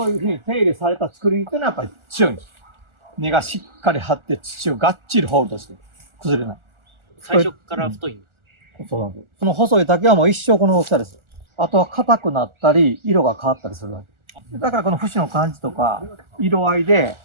ういうふうに手入れされた竹林っていうのはやっぱり強いんです。根がしっかり張って土をがっちりホールドして崩れない。最初から太いんです。そうなんです。その細い竹はもう一生この大きさです。あとは硬くなったり、色が変わったりするわけ。だからこの節の感じとか、色合いで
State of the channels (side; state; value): left; late; 1.4 ms